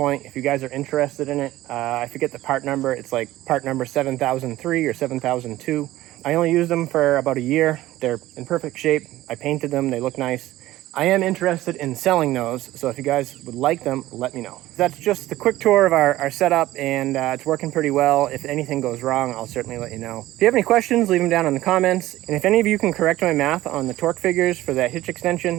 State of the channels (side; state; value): left; quieter; 15.9 dB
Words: if you guys are interested in it. I forget the part number. It's like part number 7003 or 7002. I only used them for about a year. They're in perfect shape. I painted them. They look nice. I am interested in selling those, so if you guys would like them, let me know. That's just a quick tour of our setup, and it's working pretty well. If anything goes wrong, I'll certainly let you know. If you have any questions, leave them down in the comments. And if any of you can correct my math on the torque figures for that hitch extension,